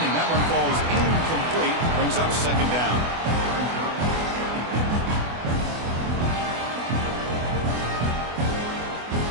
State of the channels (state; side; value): late; left; 24 ms